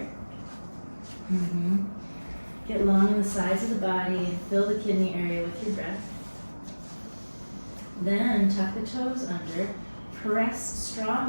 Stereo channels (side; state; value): both; inverted; correlation -1.00